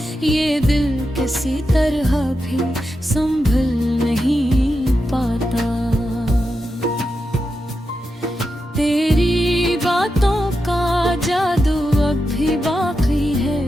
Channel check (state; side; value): normal; both; correlation 0.88